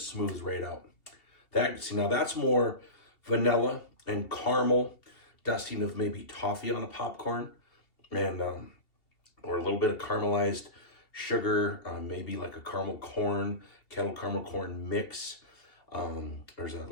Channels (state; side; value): late; right; 2.7 ms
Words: right out. Now that's more vanilla and caramel, dusting of maybe toffee on a popcorn, and or a little bit of caramelized sugar, maybe like a kettle caramel corn mix. There's a